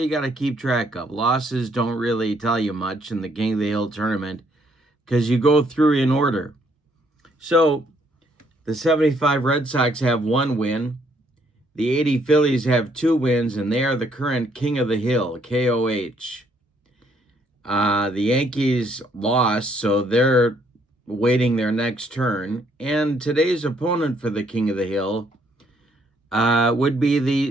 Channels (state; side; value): normal; both; correlation 0.68